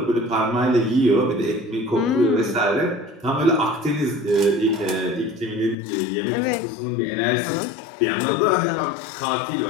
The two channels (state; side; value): drops out; right; at 5.8 s